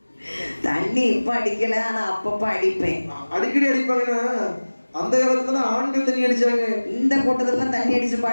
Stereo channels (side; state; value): both; inverted; correlation -1.00